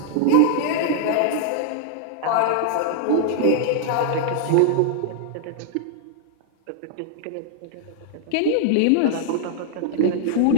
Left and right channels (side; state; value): both; different; correlation -0.01